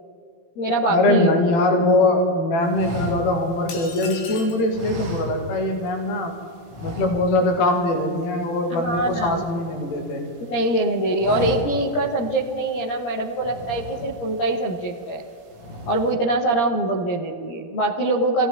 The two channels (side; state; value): right; late; 18 ms